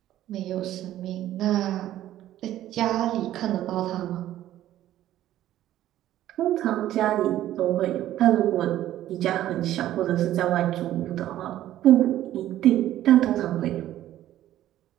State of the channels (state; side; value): quieter; left; 13.1 dB